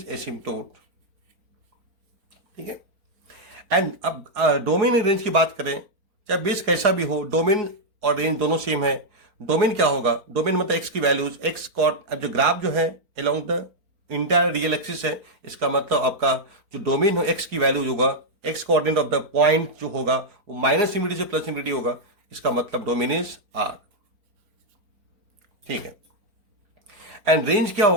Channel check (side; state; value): left; late; 4.4 ms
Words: एसिम्पटोट, ठीक है। एंड अब डोमेन एंड रेंज की बात करें, चाहे बेस कैसा भी हो, डोमेन और रेंज दोनों सेम है। डोमेन क्या होगा, डोमेन मतलब एक्स की वैल्यूज, एक्स कॉर्ड, अब जो ग्राफ जो है along the entire real axis है, इसका मतलब आपका जो डोमेन हो एक्स की वैल्यूज होगा, x coordinate of the point जो होगा वो माइनस इंफिनिटी से प्लस इंफिनिटी होगा, इसका मतलब डोमेन इज आर, ठीक है। एंड रेंज क्या